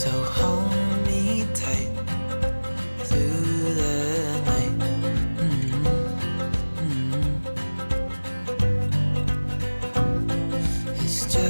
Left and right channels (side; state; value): both; inverted; correlation -1.00